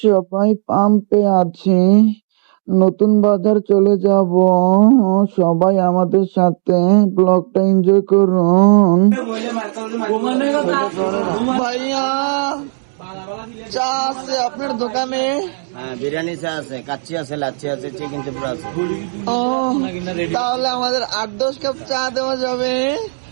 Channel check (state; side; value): silent; left; digital silence